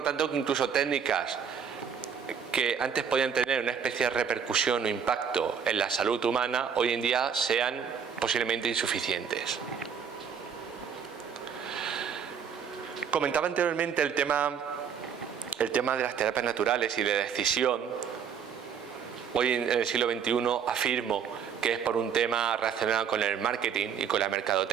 tanto que incluso técnicas que antes podían tener una especie de repercusión o impacto en la salud humana, hoy en día sean posiblemente insuficientes. Comentaba anteriormente el tema de las terapias naturales y de decisión. Hoy en el siglo XXI afirmo que es por un tema relacionado con el marketing y con la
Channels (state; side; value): quieter; left; 7.2 dB